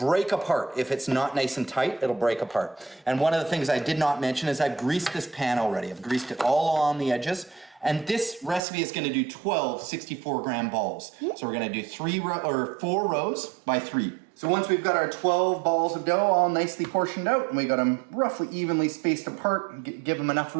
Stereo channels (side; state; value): left; drops out; at 8.6 s